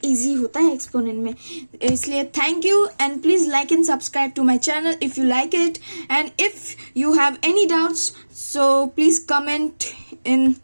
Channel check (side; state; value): both; inverted; correlation -1.00